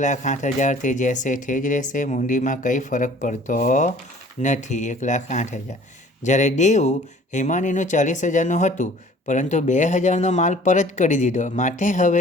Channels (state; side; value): normal; both; correlation 0.51